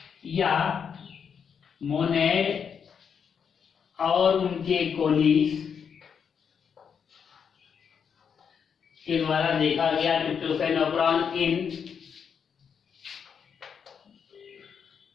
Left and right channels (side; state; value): right; quieter; 7.0 dB